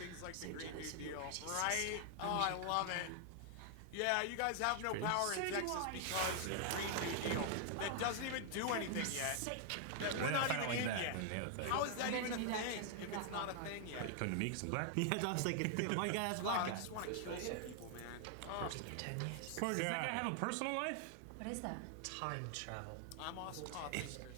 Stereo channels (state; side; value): different; both; correlation 0.00